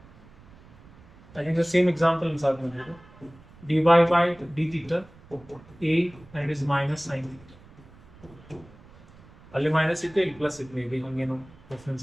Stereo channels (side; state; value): right; noise; rumble, 23 dB below the sound